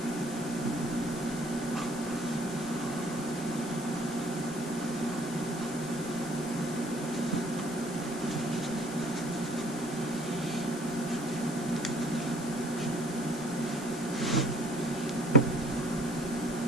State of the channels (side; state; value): left; noise; hiss, 13 dB below the sound